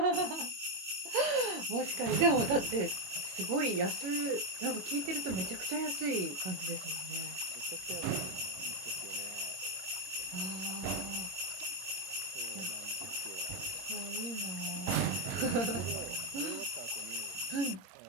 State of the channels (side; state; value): left; late; 22 ms